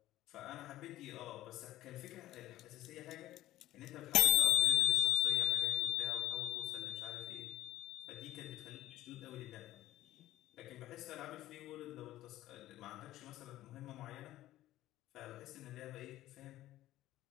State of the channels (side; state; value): right; quieter; 15.0 dB